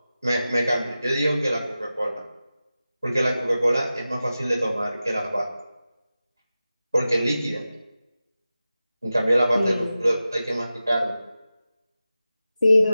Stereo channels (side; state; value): both; inverted; correlation -0.94